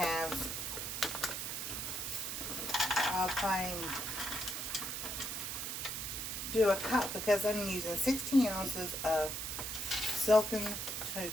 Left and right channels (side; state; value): right; noise; hiss, 4 dB below the sound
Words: I'll try and do a cup because I'm using 16 ounces of silken tofu.